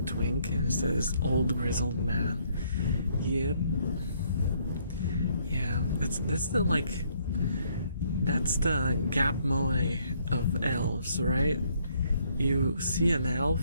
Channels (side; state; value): both; inverted; correlation -0.68